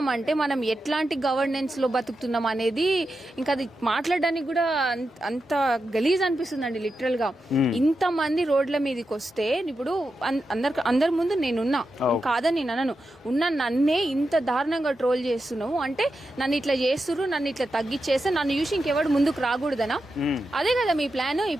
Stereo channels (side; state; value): both; normal; correlation 0.89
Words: అంటే మనం ఎట్లాంటి గవర్నెన్స్ లో బతుకుతున్నాం అనేది ఇంకా అది మాట్లాడడానికి కూడా అంత గలీజ్ అనిపిస్తుందండి లిటరల్ గా. ఇంత మంది రోడ్ల మీదకి వస్తే ఇప్పుడు అందరి ముందు నేనున్నా, కాదని నేను అనను, ఉన్న నన్నే ఇంత దారుణంగా ట్రోల్ చేస్తున్నావు అంటే నన్ను ఇట్లా చేస్తున్నారు, నన్ను ఇట్లా తగ్గిచ్చేస్తే నన్ను చూసి ఇంకెవడు ముందుకు రాకూడదనా? అదే కదా మీ ప్లాన్.